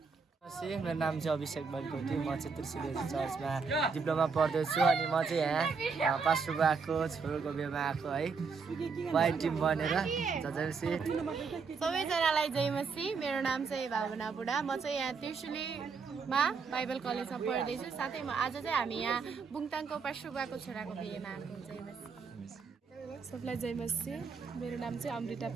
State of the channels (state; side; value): quieter; left; 5.1 dB